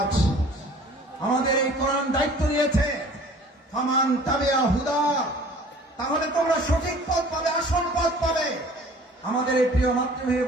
আমাদের এই কোরআন দায়িত্ব নিয়েছে, ফামান তাবিআ হুদা, তাহলে তোমরা সঠিক পথ পাবে, আসল পথ পাবে। আমাদের এই প্রিয় মাতৃভূমি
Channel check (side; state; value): both; normal; correlation 0.49